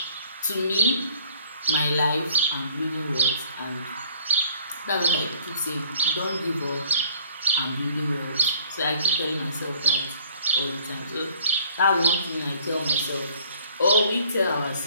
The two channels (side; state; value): both; inverted; correlation -0.56